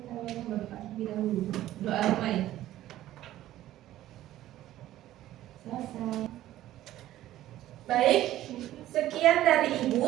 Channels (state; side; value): quieter; left; 14.1 dB